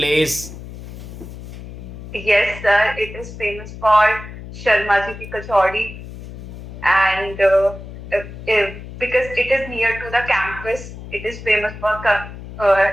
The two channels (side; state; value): left; noise; hum, 13 dB below the sound